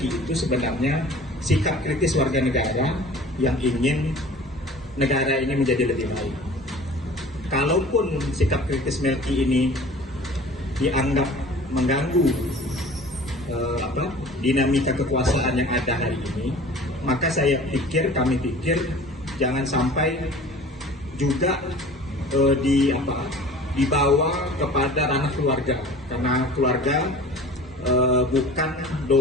itu sebenarnya sikap kritis warga negara yang ingin negara ini menjadi lebih baik. Kalaupun sikap kritis Melki ini dianggap mengganggu dinamika kekuasaan yang ada hari ini, maka kami pikir jangan sampai juga dibawa kepada ranah keluarga, karena keluarga bukan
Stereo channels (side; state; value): both; normal; correlation 0.44